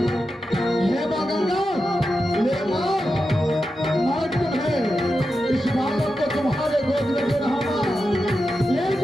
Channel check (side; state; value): both; normal; correlation 0.89